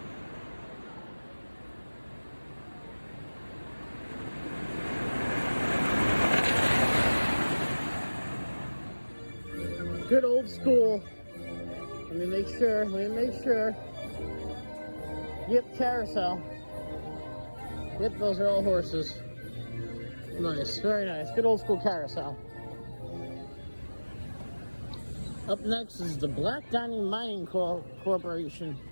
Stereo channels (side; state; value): both; inverted; correlation -1.00